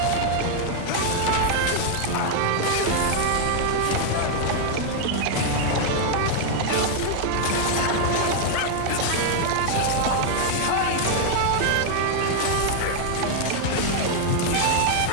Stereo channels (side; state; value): both; different; correlation 0.00